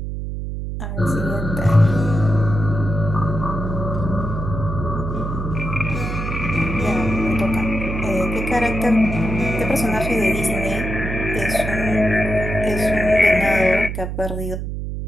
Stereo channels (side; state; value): right; noise; hum, 5 dB below the sound